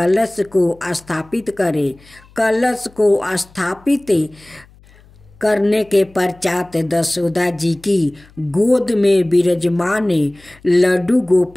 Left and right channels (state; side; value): noise; left; hum, 27 dB below the sound